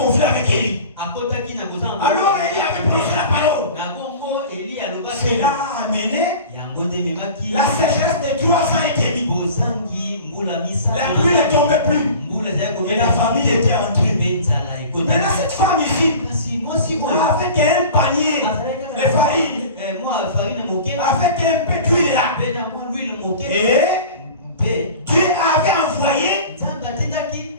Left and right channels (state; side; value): inverted; both; correlation -0.39